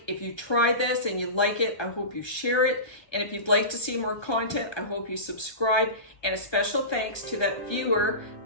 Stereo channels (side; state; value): right; late; 1.2 ms